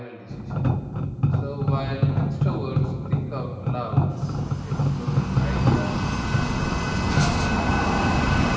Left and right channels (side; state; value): both; identical; correlation 1.00